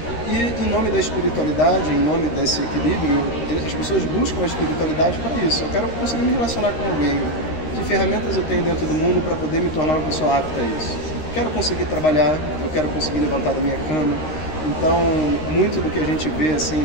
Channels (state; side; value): late; right; 13 ms